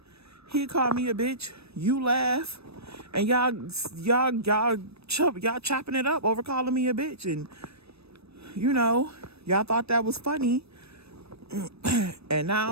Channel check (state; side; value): late; left; 0.78 ms